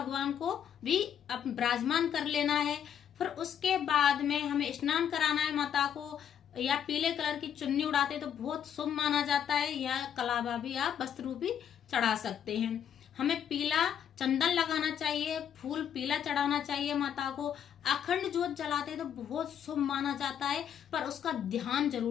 को भी विराजमान कर लेना है। फिर उसके बाद में हमें स्नान कराना है माता को। या पीले कलर की चुन्नी उड़ाते तो बहुत शुभ माना जाता है, या कलावा भी आप वस्त्र भी चढ़ा सकते हैं। हमें पीला चंदन लगाना चाहिए, फूल पीला चढ़ाना चाहिए माता को। अखंड जोत जलाते तो बहुत शुभ माना जाता है, पर उसका ध्यान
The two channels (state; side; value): quieter; right; 8.9 dB